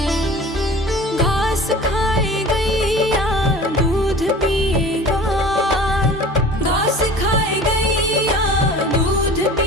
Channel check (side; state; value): both; normal; correlation 0.42